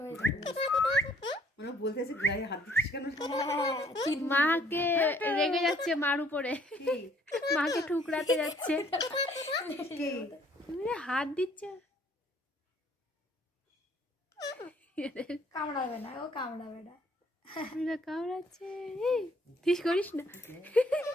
হয়ে যাবে। ওরা বলতেছে গায়ে হাত দিচ্ছিস কেন মাকে রেগে যাচ্ছে মার উপরে, কি মাকে ঠুকরাতে যাচ্ছে। কি তুমি হাত দিচ্ছে কামড়াবে না, ও কামড়াবে না। কামড়াচ্ছে ঠিক করিস না।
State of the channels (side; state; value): both; normal; correlation 0.62